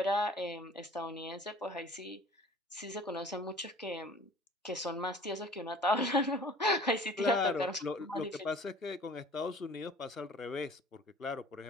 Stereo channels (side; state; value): both; normal; correlation 0.48